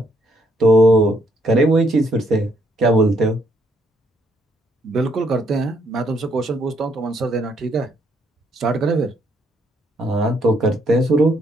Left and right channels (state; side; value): normal; both; correlation 0.71